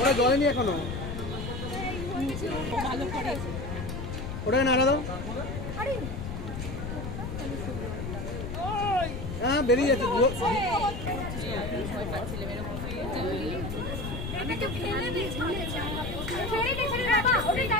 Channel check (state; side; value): noise; left; rumble, 6 dB below the sound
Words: জলেনি এখনো, ওটাকে নাড়া দাও। হ্যাঁ বেরিয়ে যাচ্ছে।